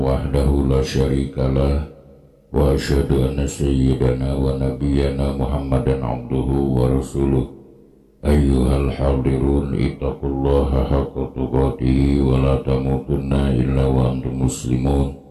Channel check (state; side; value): identical; both; correlation 1.00